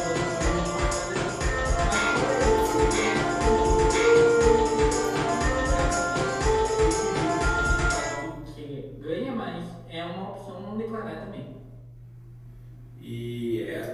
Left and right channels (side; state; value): both; identical; correlation 1.00